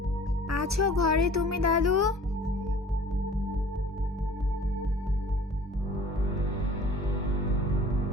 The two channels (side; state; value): both; normal; correlation 0.48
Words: আছো ঘরে তুমি দাদু?